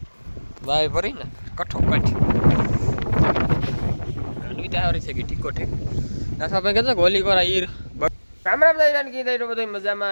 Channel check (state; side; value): inverted; both; correlation -1.00